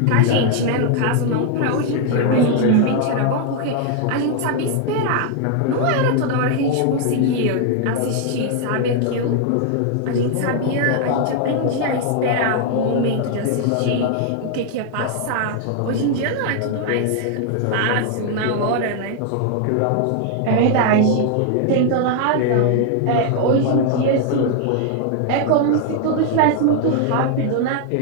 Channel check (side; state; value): both; different; correlation 0.00